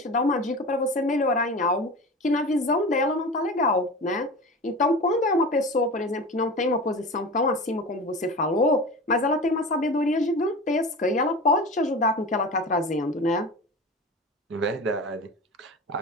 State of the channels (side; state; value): both; normal; correlation 0.32